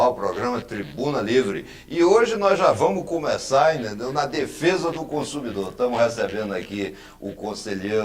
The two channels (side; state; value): both; identical; correlation 1.00